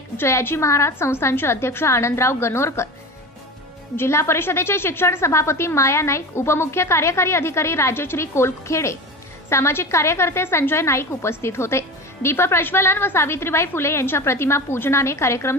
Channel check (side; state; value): both; normal; correlation 0.29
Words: जयाजी महाराज संस्थानचे अध्यक्ष आनंदराव गणोरकर, जिल्हा परिषदेचे शिक्षण सभापती माया नाईक, उपमुख्य कार्यकारी अधिकारी राजश्री कोलखेडे, सामाजिक कार्यकर्ते संजय नाईक उपस्थित होते. दीप प्रज्वलन व सावित्रीबाई फुले यांच्या प्रतिमा पूजनाने कार्यक्रम